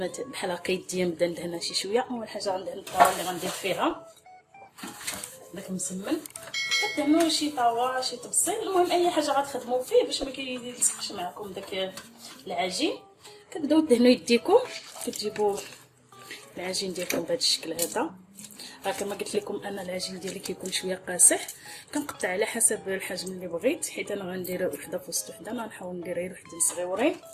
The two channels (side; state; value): both; identical; correlation 1.00